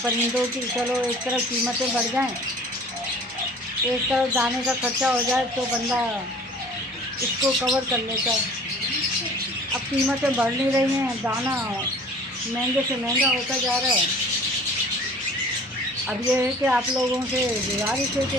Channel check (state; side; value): normal; both; correlation 0.47